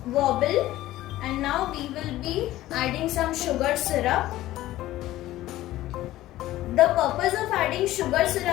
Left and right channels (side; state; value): right; quieter; 15.5 dB